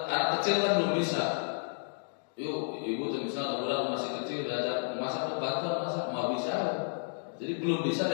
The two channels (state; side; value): silent; right; digital silence